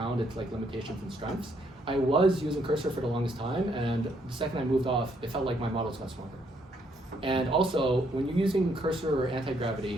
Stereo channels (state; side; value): normal; both; correlation 0.71